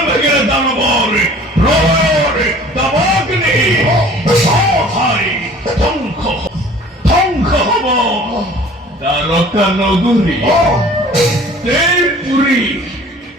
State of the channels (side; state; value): both; normal; correlation 0.48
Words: ভেঙে দানবর প্রলয়ের দাবাগ্নি। ভাই ধ্বংস ধ্বংস হব দ্বারকা নগরী দেবপুরী।